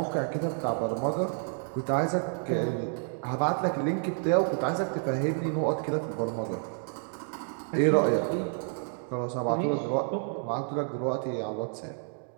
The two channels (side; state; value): left; silent; 58 dB below the other